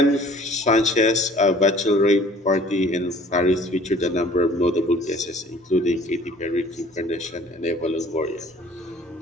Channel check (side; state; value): both; normal; correlation 0.52